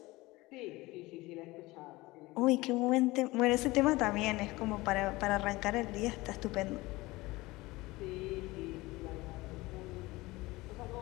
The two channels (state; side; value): quieter; right; 20.7 dB